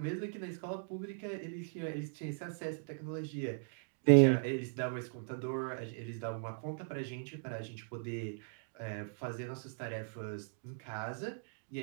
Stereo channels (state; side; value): silent; left; digital silence